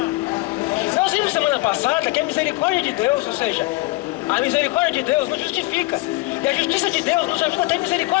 Nós vimos semana passada que a misericórdia de Deus, ou seja, a misericórdia de Deus nos justifica. E a justiça de Deus nos ajuda a ter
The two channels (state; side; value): quieter; right; 21.8 dB